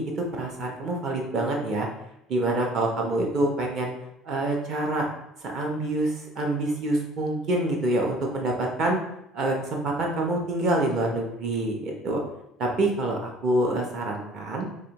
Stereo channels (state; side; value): normal; both; correlation 0.52